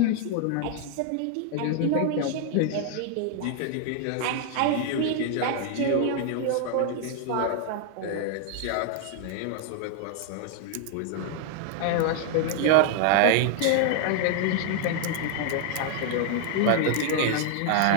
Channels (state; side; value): different; both; correlation 0.00